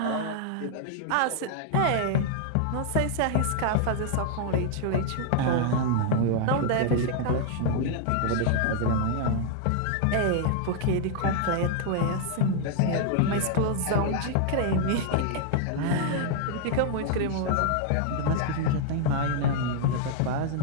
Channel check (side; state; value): both; different; correlation -0.01